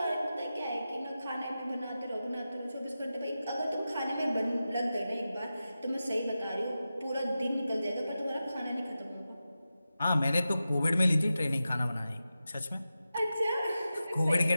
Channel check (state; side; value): inverted; both; correlation -0.92